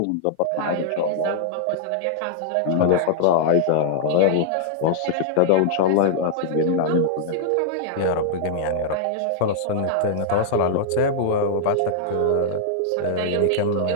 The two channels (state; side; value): different; both; correlation -0.01